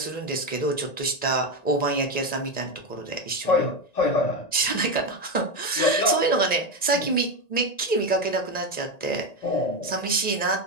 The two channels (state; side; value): late; right; 1.9 ms